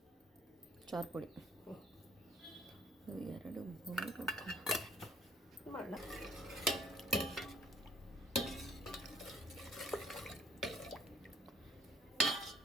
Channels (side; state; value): both; normal; correlation 0.60